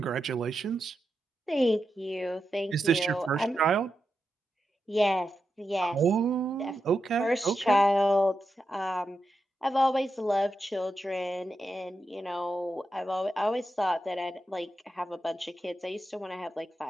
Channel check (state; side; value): normal; both; correlation 0.88